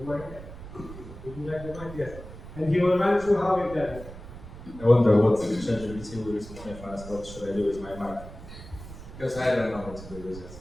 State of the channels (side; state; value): right; noise; rumble, 14 dB below the sound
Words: Would you like the mic? Yes. And he will run through how we've done it. I wonder what ChatGPT will recently find us. What should I do with my mic? Because I don't know what to do with it.